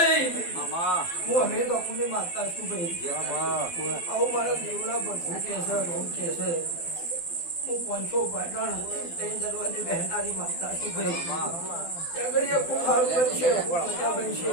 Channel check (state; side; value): late; right; 12 ms